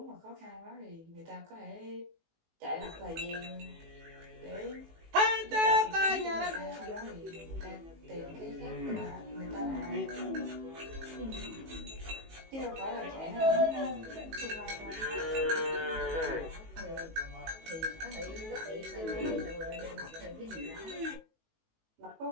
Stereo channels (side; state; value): left; late; 19 ms